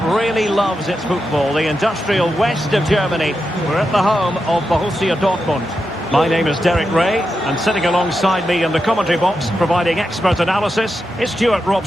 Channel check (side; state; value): both; normal; correlation 0.88